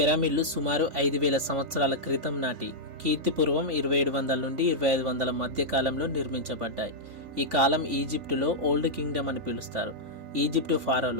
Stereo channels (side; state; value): left; late; 3.5 ms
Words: సుమారు 5000 సంవత్సరాల క్రితం నాటి కీర్తిపూర్వం 2700 నుండి 2500 మధ్య కాలంలో నిర్మించబడ్డాయి. ఈ కాలం ఈజిప్టులో ఓల్డ్ కింగ్డమ్ అని పిలుస్తారు. ఈజిప్టు